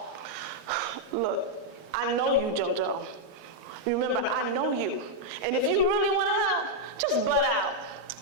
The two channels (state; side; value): normal; both; correlation -0.02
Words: Look, I know you, JoJo. Remember, I know you. And if you really want to help, just butt out.